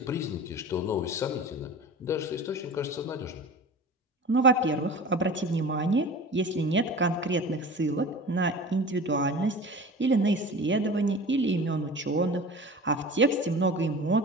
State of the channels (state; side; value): normal; both; correlation 0.36